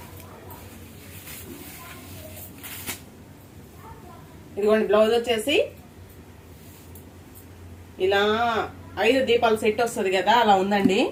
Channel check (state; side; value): identical; both; correlation 1.00